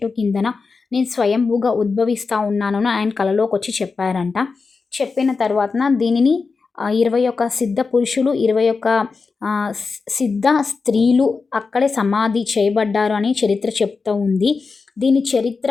కిందన నేను స్వయంభూగా ఉద్భవిస్తా ఉన్నానని ఆయన కలలోకొచ్చి చెప్పారంట. చెప్పిన తర్వాతన దీనిని 21 సిద్ధ పురుషులు, 21 సిద్ధ స్త్రీలు అక్కడే సమాధి చేయబడ్డారు అని చరిత్ర చెప్తూ ఉంది. దీని చరిత్ర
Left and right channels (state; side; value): quieter; right; 4.5 dB